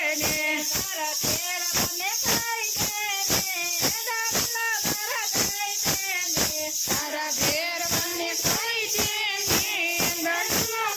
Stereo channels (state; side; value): identical; both; correlation 1.00